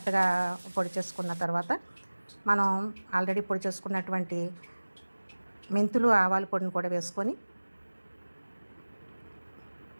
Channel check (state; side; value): inverted; both; correlation -1.00